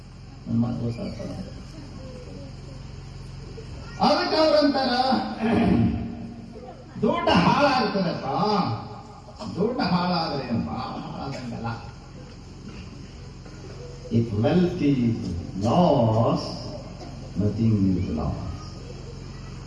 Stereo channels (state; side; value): identical; both; correlation 1.00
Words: ನನ್ನ ಮಾತು ಗೊತ್ತಾಗ್ತದೆ. ಅದಕ್ಕೆ ಅವ್ರಂತಾರ ದುಡ್ಡು ಹಾಳಾಗ್ತದಪ್ಪ, ದುಡ್ಡು ಹಾಳಾದ್ರೆ ಹಾಳಾದಂಗಲ್ಲ. If wealth is lost, nothing is lost.